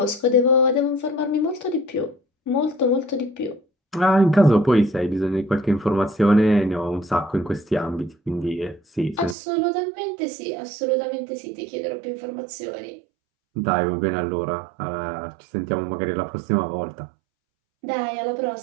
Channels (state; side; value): drops out; left; at 9.3 s